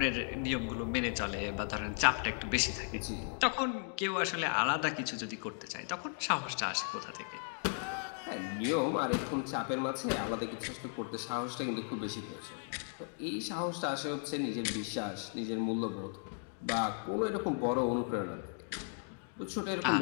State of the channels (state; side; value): silent; right; 54 dB below the other